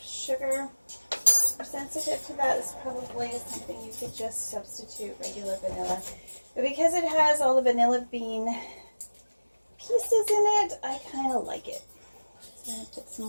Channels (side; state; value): both; inverted; correlation -1.00